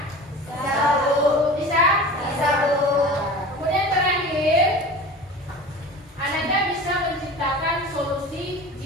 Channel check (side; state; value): both; normal; correlation 0.36